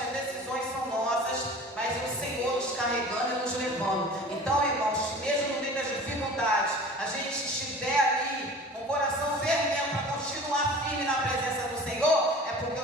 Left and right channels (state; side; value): normal; both; correlation 0.41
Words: as decisões são nossas, mas é o Senhor nos carregando e nos levando. Então, irmãos, mesmo no meio das dificuldades, a gente estiver ali com o coração fervendo para continuar firme na presença do Senhor, é porque